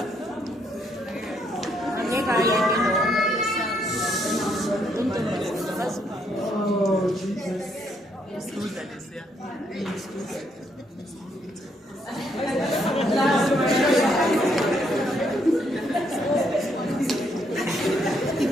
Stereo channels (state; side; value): normal; both; correlation 0.73